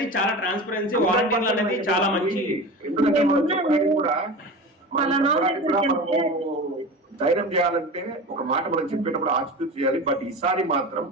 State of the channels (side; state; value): both; normal; correlation 0.30